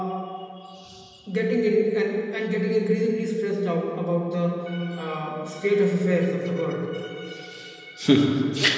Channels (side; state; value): both; identical; correlation 1.00